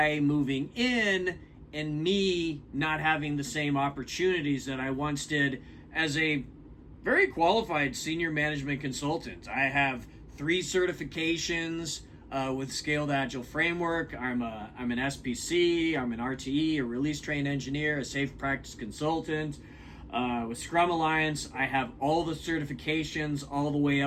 moving in and me not having the same opportunities that I once did as a very qualified senior management consultant. I have 3 certifications with Scaled Agile Framework. I'm an SPC, I'm an RTE, a release trained engineer, a safe practice consultant. With Scrum Alliance, I have all the certifications all the way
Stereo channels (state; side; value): identical; both; correlation 1.00